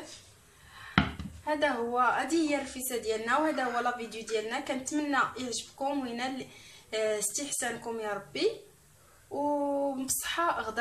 هذا هو، هذه هي الرفيسه ديالنا، وهذا هو لا فيديو ديالنا. كنتمنى يعجبكم وينال استحسانكم يا ربي، وبصحه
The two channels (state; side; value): identical; both; correlation 1.00